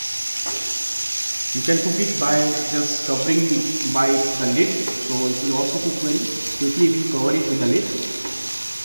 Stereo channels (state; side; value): inverted; both; correlation -1.00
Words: You can cook it by just covering by the lid, so it will also cook very quickly if you cover it with the lid.